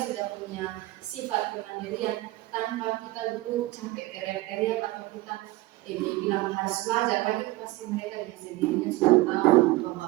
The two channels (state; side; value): quieter; left; 18.9 dB